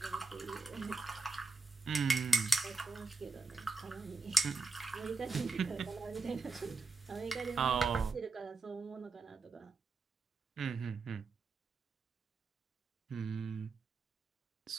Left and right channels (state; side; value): quieter; left; 4.0 dB